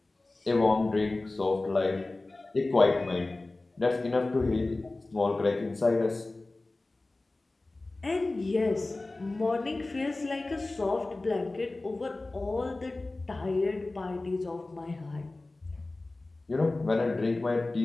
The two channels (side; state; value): right; quieter; 3.0 dB